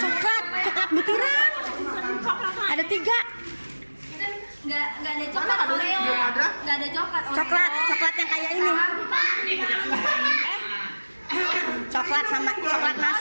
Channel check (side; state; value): both; inverted; correlation -1.00